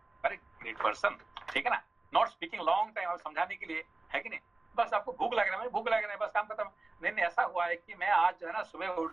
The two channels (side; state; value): left; quieter; 3.1 dB